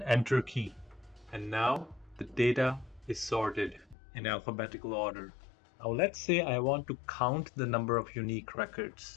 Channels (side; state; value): right; drops out; at 4.0 s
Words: Enter key. And now the data is sorted in alphabetical order. Now let's say I want to count the number of unique